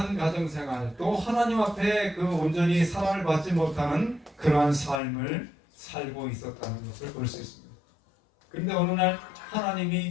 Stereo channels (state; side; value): drops out; right; at 5.0 s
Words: 가정생활, 또 하나님 앞에 그 온전히 사랑을 받지 못하는 그러한 삶을 살고 있었다는 것을 볼 수 있습니다. 그런데 어느 날